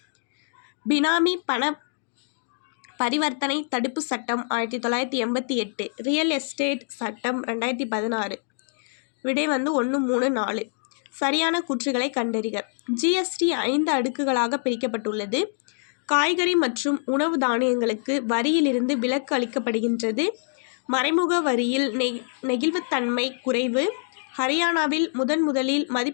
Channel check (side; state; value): right; silent; digital silence